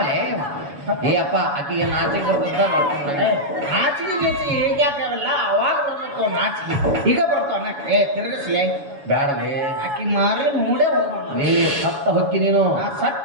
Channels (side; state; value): left; late; 7.1 ms